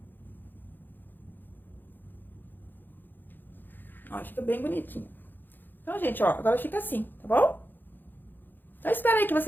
Ó, fica bem bonitinho. Então, gente, ó, agora fica assim, tá bom? Então, espero aí que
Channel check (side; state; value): right; late; 0.091 ms